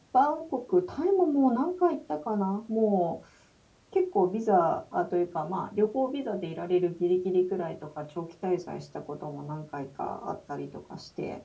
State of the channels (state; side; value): identical; both; correlation 1.00